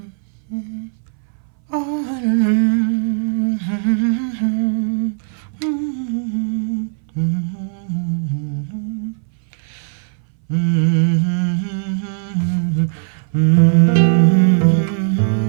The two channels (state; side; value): silent; left; 62 dB below the other